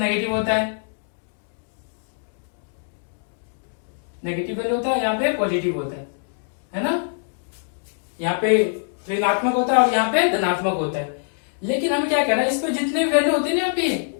होता है, नेगेटिव वैल्यू होता है, यहाँ पे पॉजिटिव होता है ना। यहाँ पे ऋणात्मक होता है और यहाँ पे धनात्मक होता है। लेकिन हमें क्या कहना है, इस पे जितने वैल्यू होती है ना, यहाँ पे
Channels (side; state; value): right; silent; digital silence